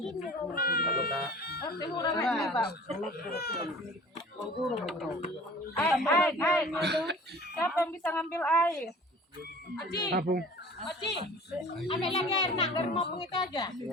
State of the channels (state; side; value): normal; both; correlation 0.45